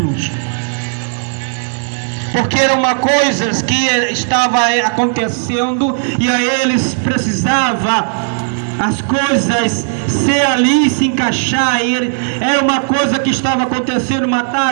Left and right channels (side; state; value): left; silent; digital silence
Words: porque era uma coisa que estava acontecendo e a eles precisava as coisas ser ali, se encaixar. Era uma coisa que estava acontecendo: